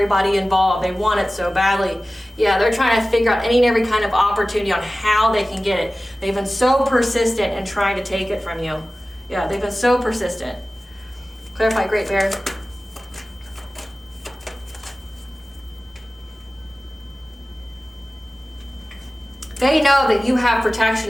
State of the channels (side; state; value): both; normal; correlation 0.96